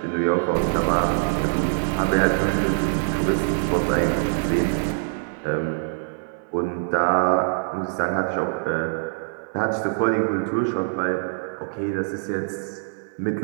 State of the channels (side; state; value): left; silent; 58 dB below the other